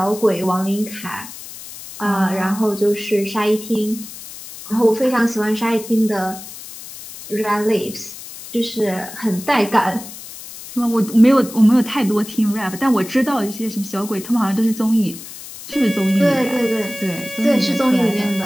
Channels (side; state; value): left; noise; hiss, 14 dB below the sound